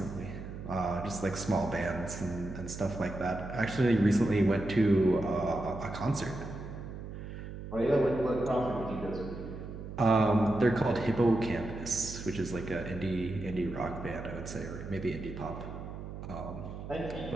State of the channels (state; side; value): noise; right; hum, 9 dB below the sound